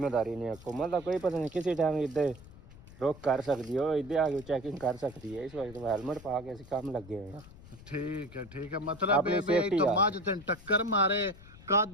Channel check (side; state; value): left; noise; rumble, 19 dB below the sound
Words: नहीं है। हुकूमत का कोई पता नहीं किसी टाइम इधर रोक कर सकती हो, इधर आगे चेकिंग कर सकती है। इस वजह हेलमेट पा के असं काम लगे हुए हैं। ठीक है मतलब अपनी ये safety तो आ। मज तेन टक्कर मारे